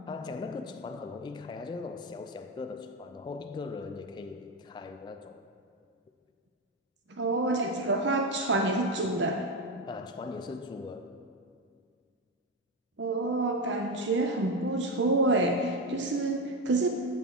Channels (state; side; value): normal; both; correlation 0.13